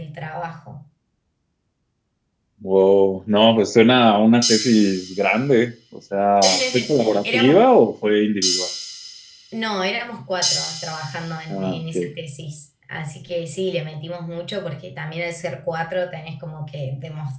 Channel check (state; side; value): identical; both; correlation 1.00